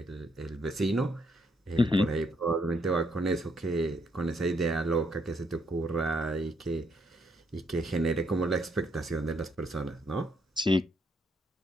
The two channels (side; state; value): both; normal; correlation 0.74